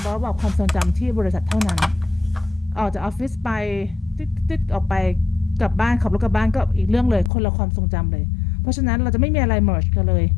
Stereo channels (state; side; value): drops out; right; at 7.3 s